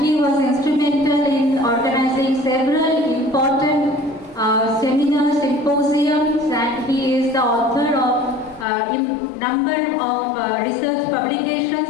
he was instrumental in organizing several important seminars, symposiums, and he is the author of number of research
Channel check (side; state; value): right; drops out; at 8.7 s